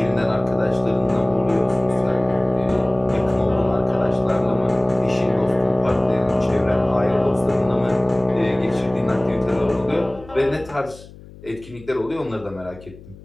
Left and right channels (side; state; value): left; noise; hum, 20 dB below the sound